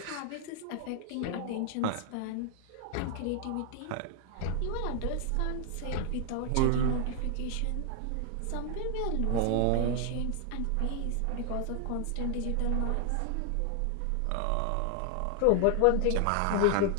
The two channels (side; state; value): both; different; correlation 0.00